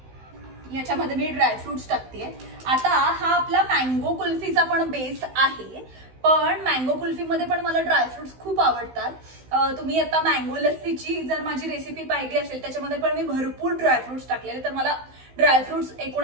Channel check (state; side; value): late; left; 16 ms